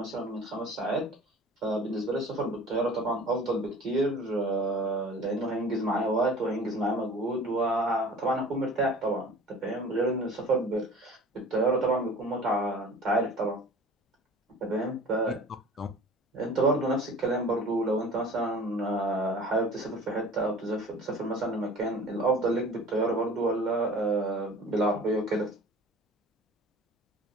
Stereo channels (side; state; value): both; normal; correlation 0.43